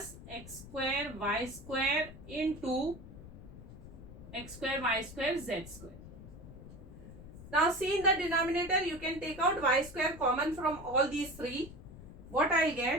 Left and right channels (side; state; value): left; noise; rumble, 15 dB below the sound